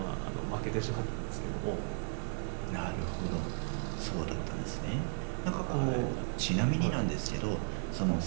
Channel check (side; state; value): left; silent; 54 dB below the other